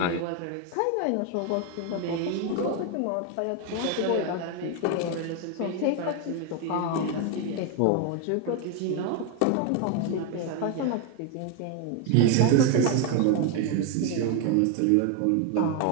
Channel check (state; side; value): different; both; correlation 0.01